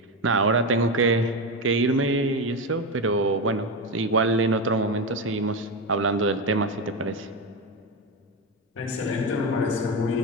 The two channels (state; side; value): normal; both; correlation 0.14